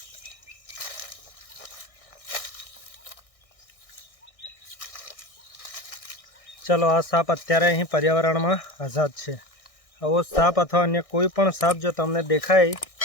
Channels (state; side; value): late; right; 1.6 ms